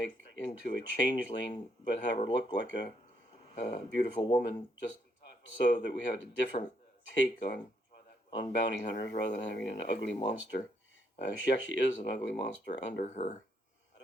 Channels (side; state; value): both; normal; correlation 0.74